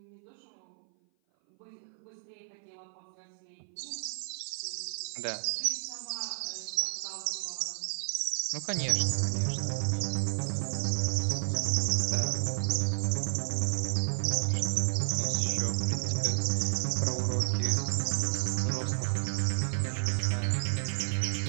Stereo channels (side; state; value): left; silent; 56 dB below the other